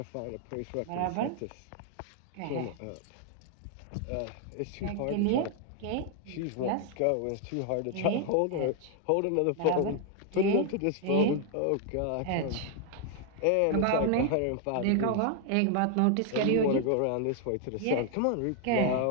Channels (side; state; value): both; different; correlation 0.00